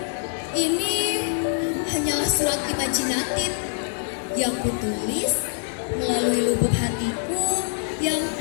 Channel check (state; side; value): silent; right; digital silence